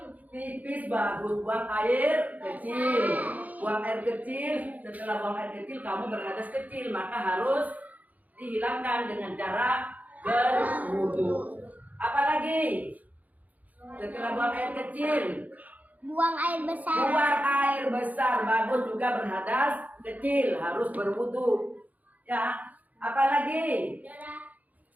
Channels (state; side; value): late; left; 0.077 ms